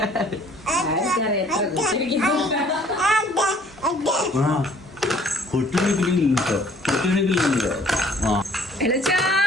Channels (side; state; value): both; normal; correlation 0.57